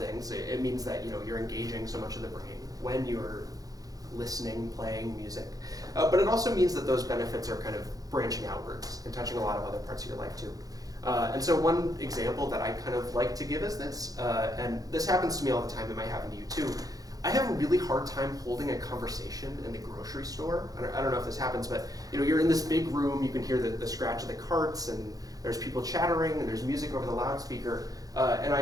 It means that you're engaging so much of the brain when you're listening, playing music. But it also means that those benefits are kind of branching outwards and touching a lot of other parts of your life too. And so one example that I kind of like to give is this, and this happens to me all the time, it might happen to you too. I have a really hard time holding a conversation in the grocery store. I don't know if this happens, but you're in this big room, you can hear the scratch of the carts, and there's people chattering, and there's music over the loudspeaker. And I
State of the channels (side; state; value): left; late; 0.17 ms